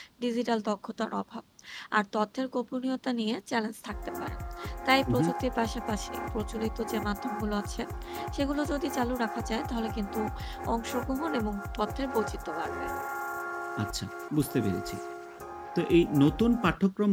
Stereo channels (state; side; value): identical; both; correlation 1.00